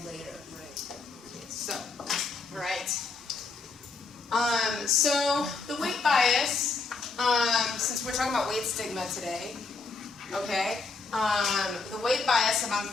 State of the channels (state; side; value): quieter; right; 4.3 dB